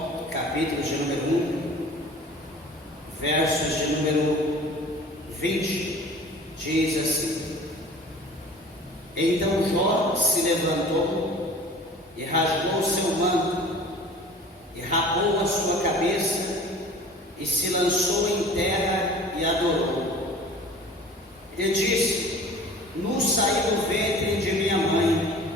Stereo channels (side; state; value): both; normal; correlation 0.43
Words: capítulo de número 1, versos de número 20, diz assim: Então Jó se levantou e rasgou o seu manto, e rapou a sua cabeça, e se lançou em terra e adorou. E disse: Nu saí do ventre de minha mãe,